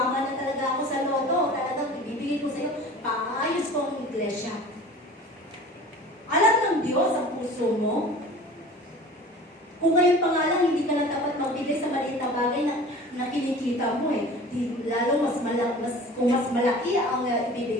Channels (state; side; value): normal; both; correlation 0.41